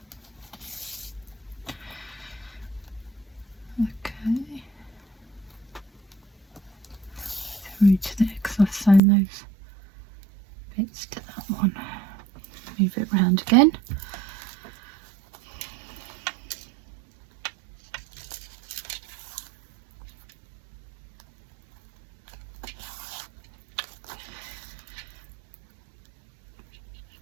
Through to there because I've sewn those bits to that one. Move it round again.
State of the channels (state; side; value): drops out; left; at 9.0 s